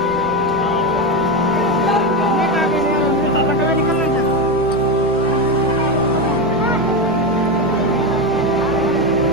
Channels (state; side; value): normal; both; correlation 0.13